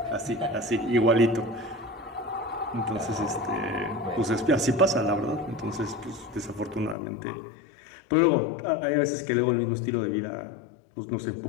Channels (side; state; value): right; drops out; at 7.0 s